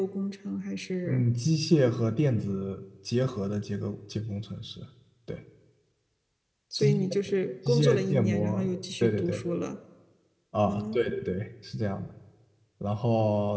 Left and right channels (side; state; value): both; identical; correlation 1.00